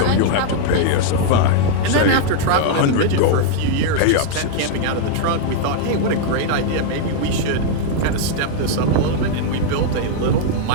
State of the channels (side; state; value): both; different; correlation -0.01